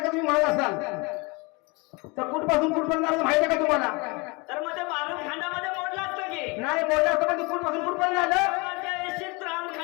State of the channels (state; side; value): quieter; right; 27.9 dB